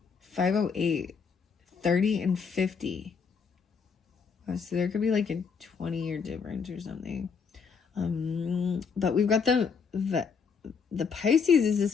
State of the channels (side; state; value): right; quieter; 5.9 dB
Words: 508. 30 and 50. So there could be like a 20-year difference or something. But we've got the Pisces is